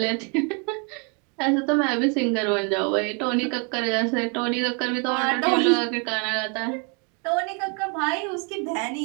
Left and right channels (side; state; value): left; quieter; 36.0 dB